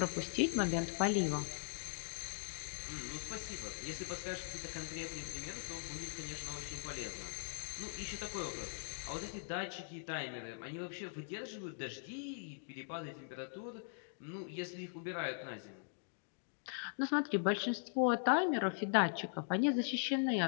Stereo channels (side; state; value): right; silent; digital silence